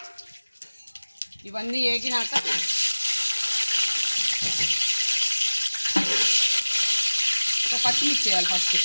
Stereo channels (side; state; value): both; inverted; correlation -1.00